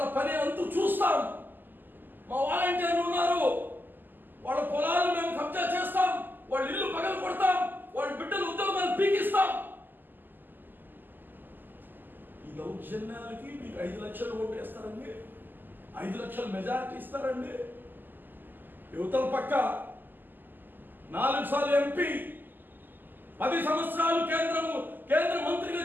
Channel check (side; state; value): left; late; 0.090 ms